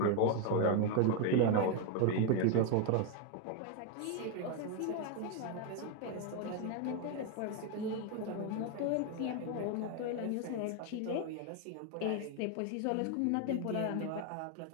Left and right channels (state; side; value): different; both; correlation 0.01